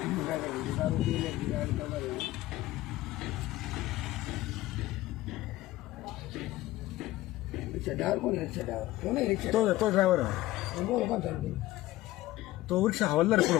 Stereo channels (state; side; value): quieter; right; 16.6 dB